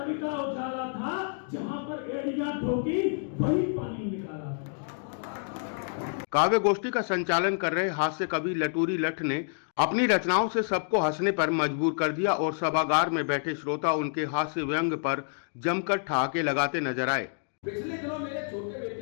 का उजाला था, जहां पर एड़ियां ठोकी वही पानी निकाला था। काव्य गोष्ठी का संचालन कर रहे हास्य कवि लटूरी लट्ट ने अपनी रचनाओं से सबको हंसने पर मजबूर कर दिया और सभागार में बैठे श्रोता उनके हास्य व्यंग पर जमकर ठहाके लगाते नजर आए। पिछले दिनों मेरे छोटे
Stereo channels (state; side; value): silent; right; digital silence